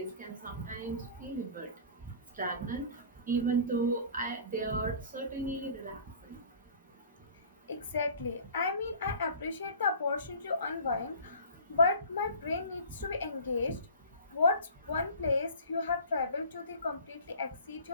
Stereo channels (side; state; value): both; inverted; correlation -0.43